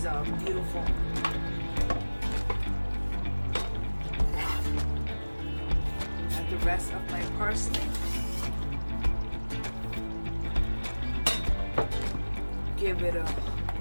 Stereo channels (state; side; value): inverted; both; correlation -1.00